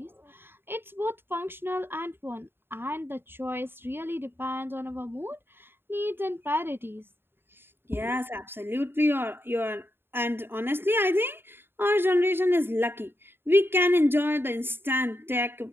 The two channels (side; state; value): left; late; 0.11 ms